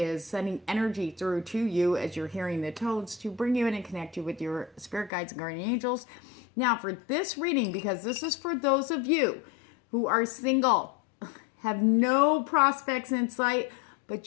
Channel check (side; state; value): right; drops out; at 5.1 s